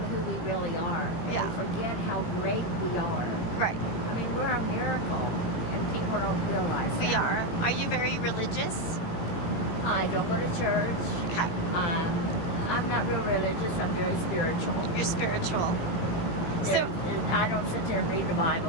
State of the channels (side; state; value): right; late; 17 ms